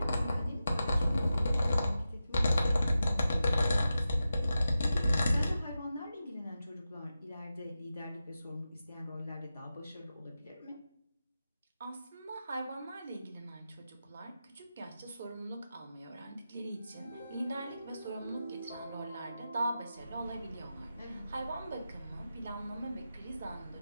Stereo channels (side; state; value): both; inverted; correlation -0.91